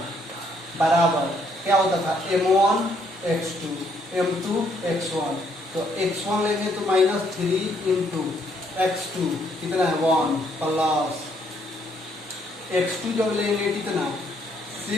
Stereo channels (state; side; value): normal; both; correlation 0.70